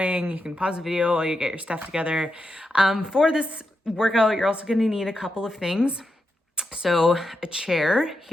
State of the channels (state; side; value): normal; both; correlation 0.86